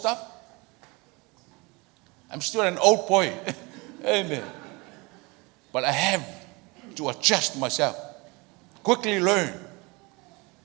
I'm still an old boy. Amen. But I have to adjust myself. Quickly learn.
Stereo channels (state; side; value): quieter; left; 26.2 dB